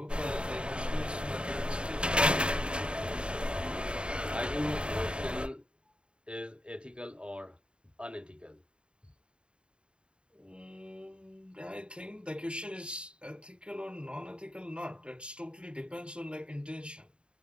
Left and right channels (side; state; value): left; late; 0.053 ms